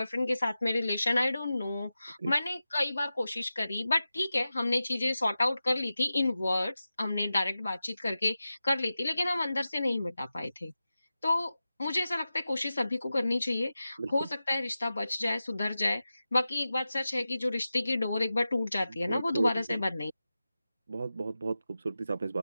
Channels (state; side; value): inverted; both; correlation -0.93